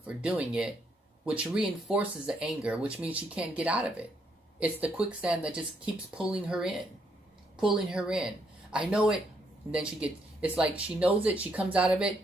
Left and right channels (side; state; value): both; normal; correlation 0.74